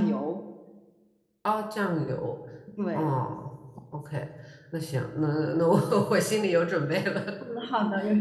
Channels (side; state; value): both; identical; correlation 1.00